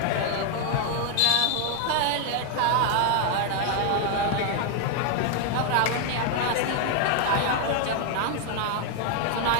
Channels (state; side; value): different; both; correlation 0.00